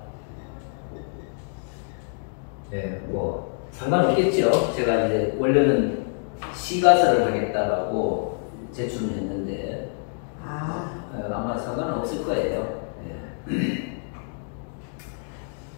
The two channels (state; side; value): silent; right; 61 dB below the other